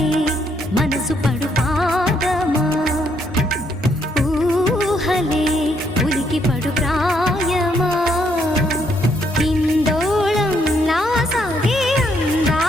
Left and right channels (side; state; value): both; normal; correlation 0.73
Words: మనసు పడు పాదమా, ఊహలే ఉలికి పడు ప్రాయమా. ఇందోళం నా సాగే